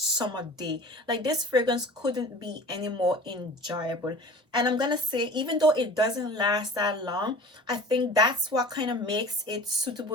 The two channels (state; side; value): normal; both; correlation 0.40